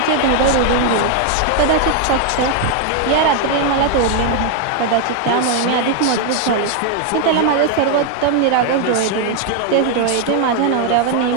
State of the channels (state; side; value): different; both; correlation 0.01